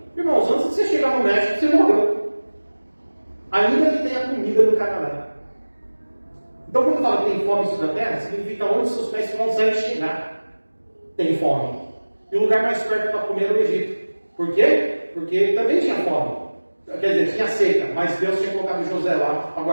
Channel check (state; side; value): inverted; both; correlation -1.00